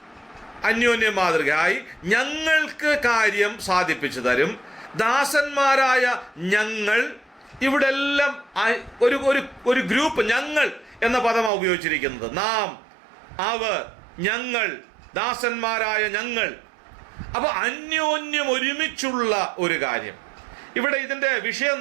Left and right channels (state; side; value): drops out; left; at 11.5 s